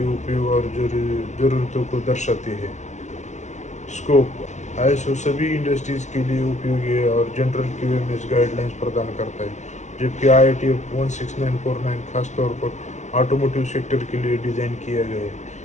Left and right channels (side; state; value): right; late; 0.34 ms